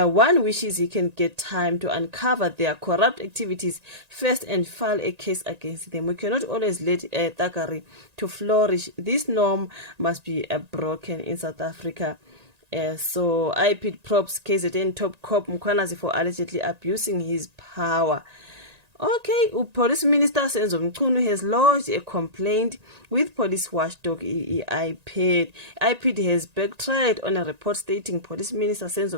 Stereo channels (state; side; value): late; left; 1.9 ms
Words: wishes he can get time to uncover their corrupt activities first and file a case against them. We cannot always let thuggery to flourish. This norm must be broken in South Africa. So I put props KZN top cop Mkhwanazi for allegedly abusing his power. Okay, Police Minister Senzo Mchunu has lodged a complaint with police watchdog IPID. IPID has backtracked on a report stating Police Minister Senzo